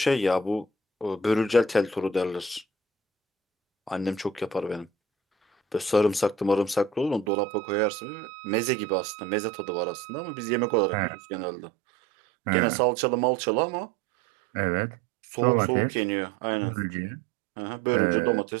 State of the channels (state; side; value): drops out; left; at 7.3 s